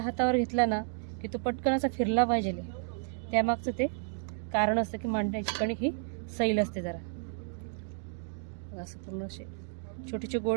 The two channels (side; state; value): left; silent; 56 dB below the other